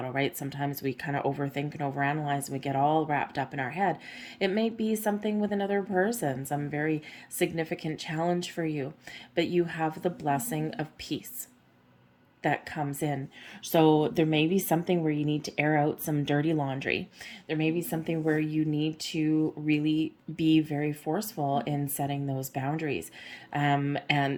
right? Sometimes we kind of overthink and overanalyze and we get all wrapped up in our head. It may be something with another person, some very significant challenge for you, but you have the blessing of peace that comes in. So there may be something where you need to air out some dirty laundry. There may be something where you need to really be very forceful in setting those boundaries. And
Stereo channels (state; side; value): identical; both; correlation 1.00